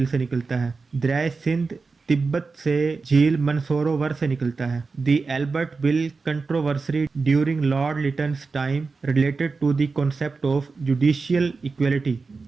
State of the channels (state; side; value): quieter; left; 4.3 dB